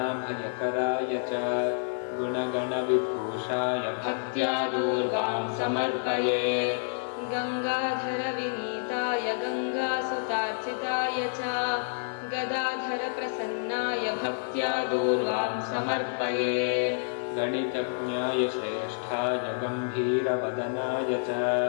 च गुणगणविभूषाय भक्त्या दूर्वां समर्पये। गंगाधरविनीताय गंगासुतार्चिताय च गदाधरप्रसन्नाय भक्त्या दूर्वां समर्पये। गणितज्ञाय श्रेष्ठाय गम्भीरवदनाय च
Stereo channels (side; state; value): right; silent; 56 dB below the other